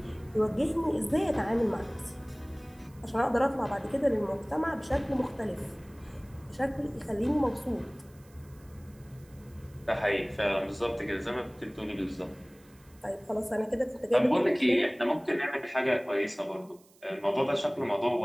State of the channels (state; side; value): noise; right; hiss, 29 dB below the sound